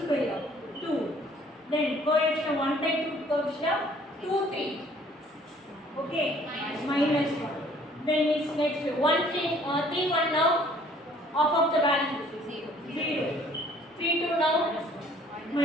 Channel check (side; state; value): both; normal; correlation 0.57